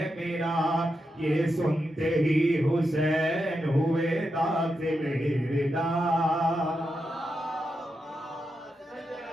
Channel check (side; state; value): both; normal; correlation 0.86